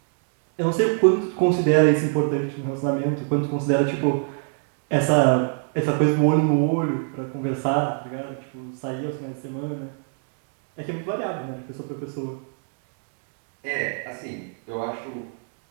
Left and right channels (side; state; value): left; silent; 59 dB below the other